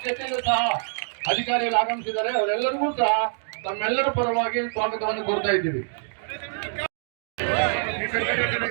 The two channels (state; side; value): silent; left; digital silence